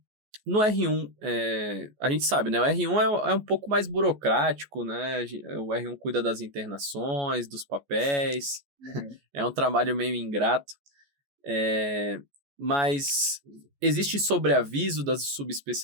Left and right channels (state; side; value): late; left; 14 ms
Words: no R1, a gente sabe, né? O R1 é um pouco mais burocrático, né? O R1 cuida das internações, dos papéis. É um trabalho meio ingrato. Mas existe sobreaviso das